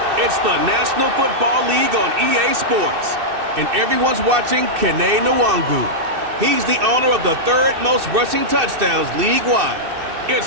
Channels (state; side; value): late; left; 2.6 ms